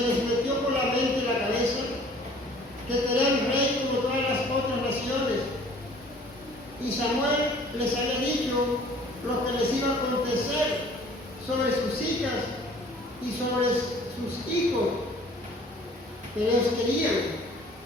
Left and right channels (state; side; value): normal; both; correlation 0.52